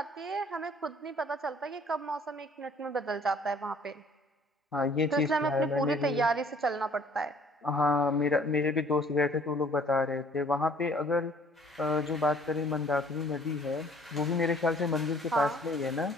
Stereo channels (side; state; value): both; normal; correlation 0.57